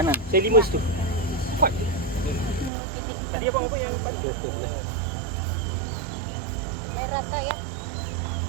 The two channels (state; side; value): drops out; left; at 2.7 s